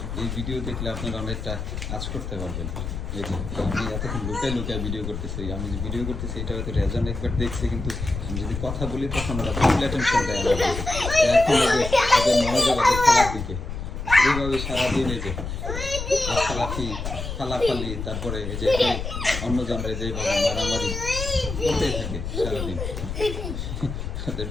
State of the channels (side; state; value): left; noise; rumble, 6 dB below the sound